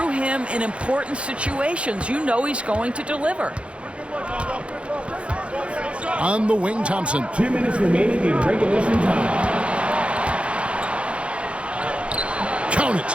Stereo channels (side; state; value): left; late; 0.060 ms